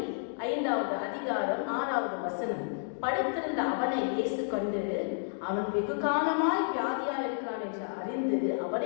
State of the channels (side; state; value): right; silent; digital silence